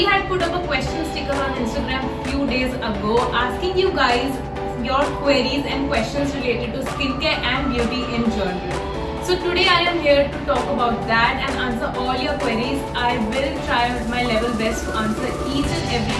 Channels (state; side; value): identical; both; correlation 1.00